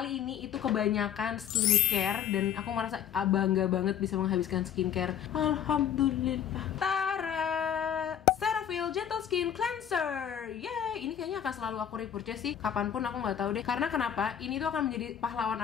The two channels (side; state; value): right; quieter; 9.3 dB